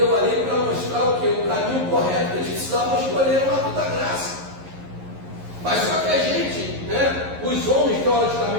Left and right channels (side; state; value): left; late; 11 ms